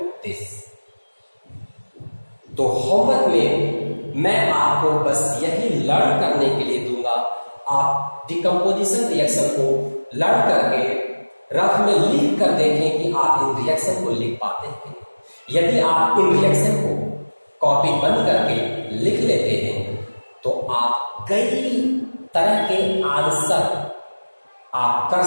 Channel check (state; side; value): inverted; both; correlation -1.00